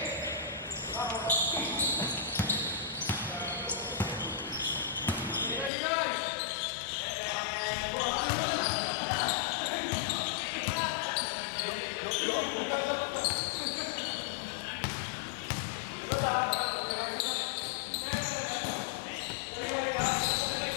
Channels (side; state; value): right; drops out; at 5.7 s